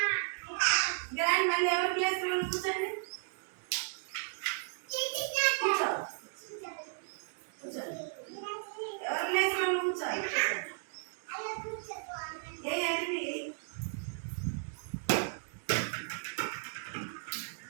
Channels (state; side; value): silent; left; digital silence